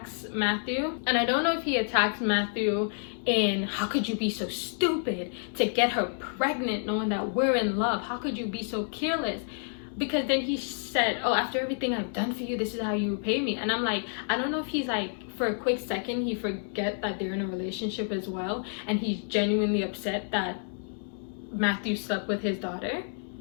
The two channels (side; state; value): right; silent; 58 dB below the other